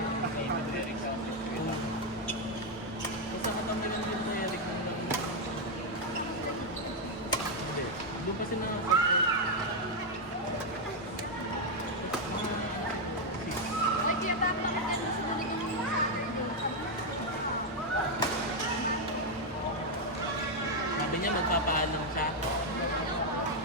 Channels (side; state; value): both; normal; correlation 0.01